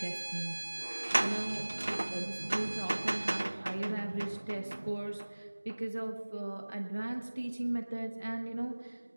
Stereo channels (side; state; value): both; inverted; correlation -1.00